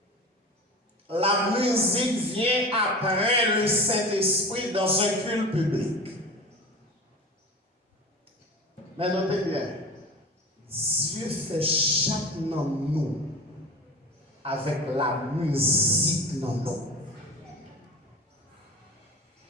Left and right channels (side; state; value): both; normal; correlation 0.33